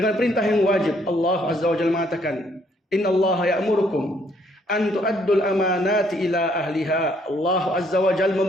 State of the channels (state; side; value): normal; both; correlation 0.67